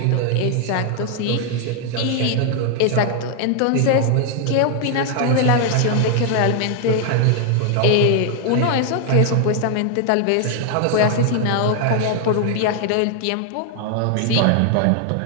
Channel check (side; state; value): both; different; correlation 0.00